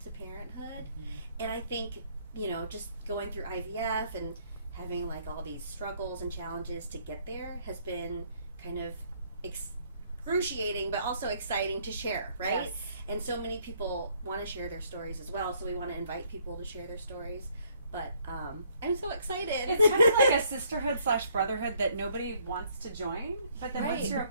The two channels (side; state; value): both; inverted; correlation -0.65